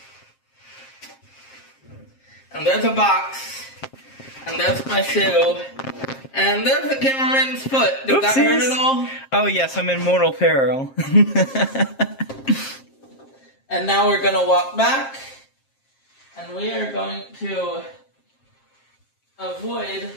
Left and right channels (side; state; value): right; late; 7.5 ms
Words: And there's a box. And there's my shoe. And there's the cameraman's foot. Did that hurt at all? Oh yes, I'm in mortal peril. And now we're going to walk back. And we are going to avoid